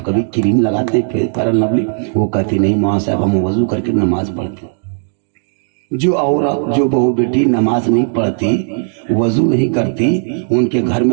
कभी क्रीम लगाते हैं फेयर लवली? वो कहती नहीं माँ साहब, हम वजू करके नमाज पढ़ते। जो औरत, जो बहू बेटी नमाज नहीं पढ़ती, वजू नहीं करती, उनके घर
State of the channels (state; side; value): silent; left; digital silence